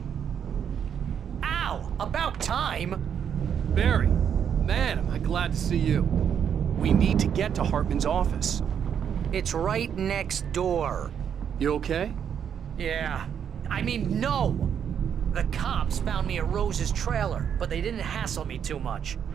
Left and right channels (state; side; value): quieter; left; 8.2 dB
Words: Ow! About time! Barry, man, am I glad to see you. We need to get to Hartman's office. It's right next door. You okay? Yeah. I mean, no! The cops found me at Rose's trailer, but they didn't hassle me too much.